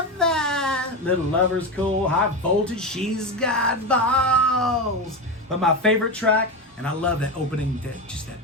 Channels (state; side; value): normal; both; correlation 0.17